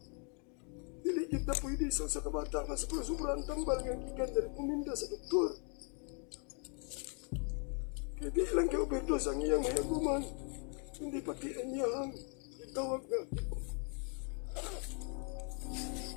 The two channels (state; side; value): quieter; right; 39.0 dB